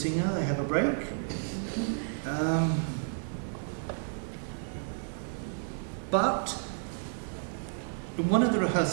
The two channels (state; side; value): silent; left; 57 dB below the other